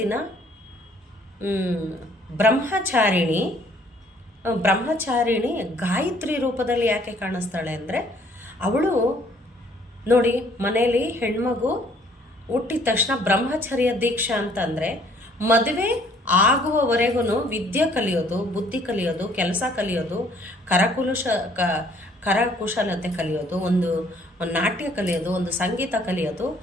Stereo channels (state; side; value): normal; both; correlation 0.61